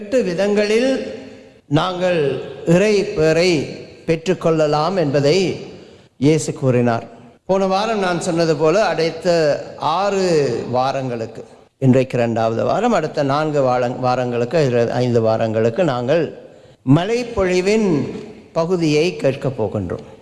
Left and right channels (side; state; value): both; identical; correlation 1.00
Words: விதங்களில் நாங்கள் இறை பேரை பெற்றுக்கொள்ளலாம் என்பதை இயேசு கூறினார். போன வாரம் நான் சொன்னது போல அடுத்த 6 வாரங்களுக்கு, இன்றைக்கு 2வது வாரம், அடுத்த 4 வாரங்களுக்கு 5 வாரங்களுக்கு நாங்கள் மலைப்பொழிவின் பகுதியை கேட்கப் போகின்றோம்.